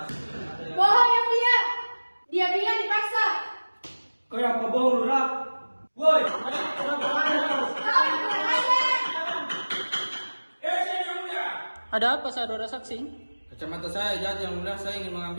ada yang... Bohong yang dia bilang dipaksa. Kayak apa bohong, Lurah? Woi, Yang Mulia. Ada apa saudara saksi? Kacamata saya jatuh, Yang Mulia. Saya ingin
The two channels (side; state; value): both; inverted; correlation -1.00